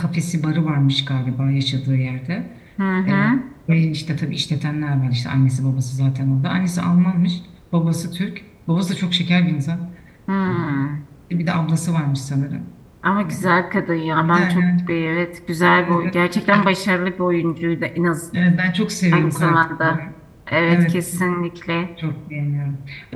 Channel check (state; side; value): identical; both; correlation 1.00